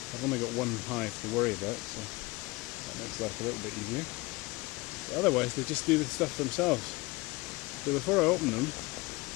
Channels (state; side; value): quieter; right; 22.9 dB